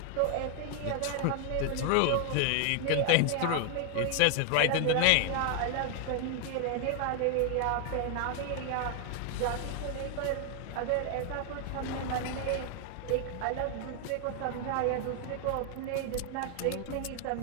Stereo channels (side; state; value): both; different; correlation 0.00